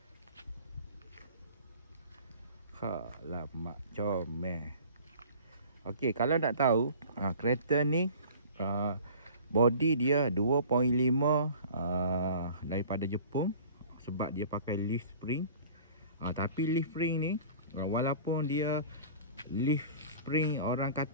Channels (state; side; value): inverted; both; correlation -0.45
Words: Alamak, comel. Okey, kalau nak tahu kereta ni body dia 2.5 daripada Jepun, sebab dia pakai leaf spring. Tapi leaf spring ni walaupun dia leaf spring orang